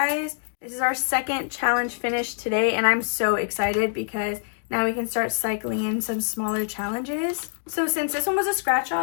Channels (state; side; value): silent; right; digital silence